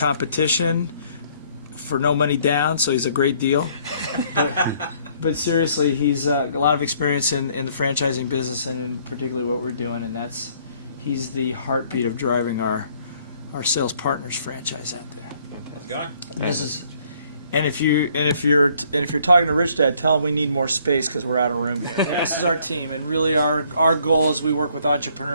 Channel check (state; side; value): inverted; both; correlation -0.63